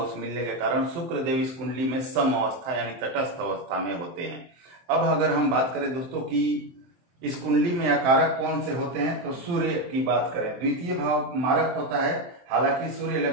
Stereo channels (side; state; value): left; late; 23 ms